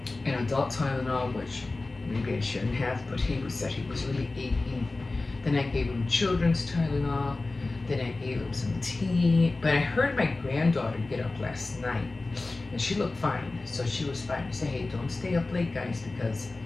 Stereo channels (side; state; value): right; quieter; 3.3 dB